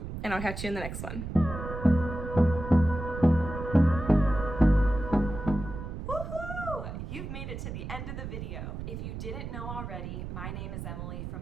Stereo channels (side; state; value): right; noise; rumble, 7 dB below the sound